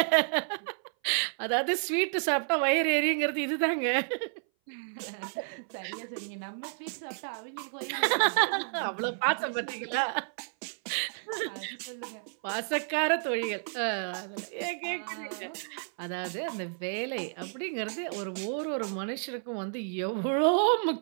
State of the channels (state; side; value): silent; left; 57 dB below the other